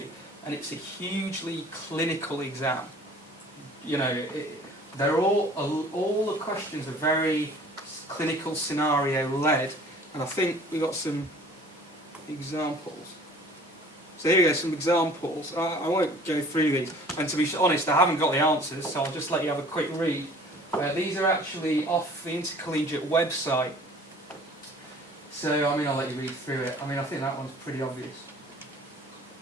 and it's a hugely clinical exam. They're all the questions are very clinical scenario led, and I think we got some examples. So here we go, some examples. I won't go through these, and to be honest, I haven't got the answers, so I'll just let you have a quick read. These are actually off the Intercollegiate website. So, I'll let you read through it. I think that one's pretty obvious.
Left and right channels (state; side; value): normal; both; correlation 0.49